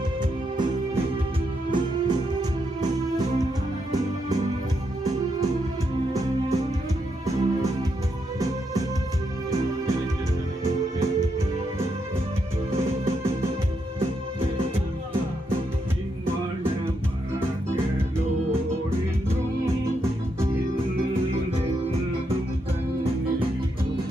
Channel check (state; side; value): normal; both; correlation 0.81